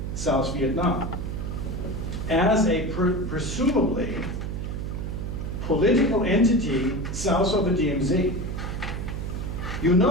South Vietnam as a presumably political entity south of the DMZ. You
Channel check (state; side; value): noise; right; hum, 4 dB below the sound